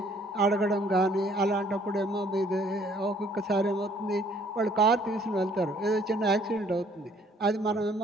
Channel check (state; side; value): normal; both; correlation 0.61